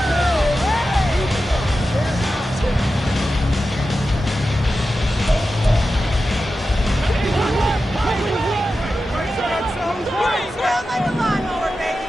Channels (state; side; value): normal; both; correlation 0.92